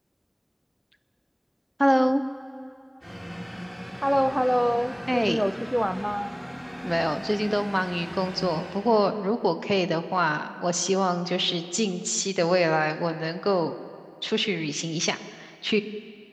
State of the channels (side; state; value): both; identical; correlation 1.00